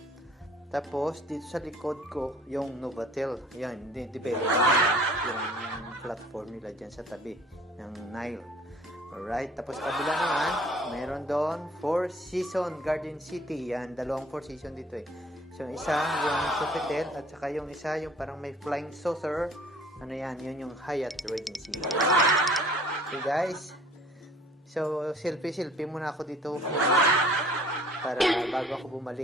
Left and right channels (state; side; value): normal; both; correlation 0.53